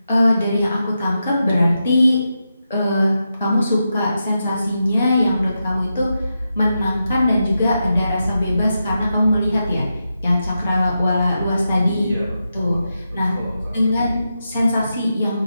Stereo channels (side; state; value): both; inverted; correlation -0.88